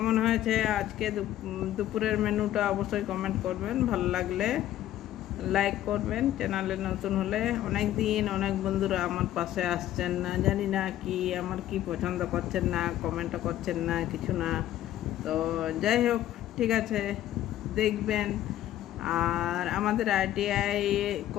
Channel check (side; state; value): right; quieter; 12.9 dB